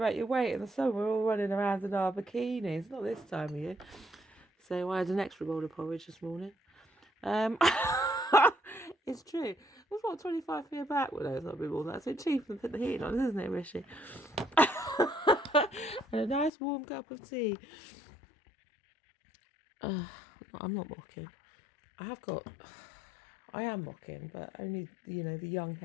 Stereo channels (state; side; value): drops out; right; at 16.5 s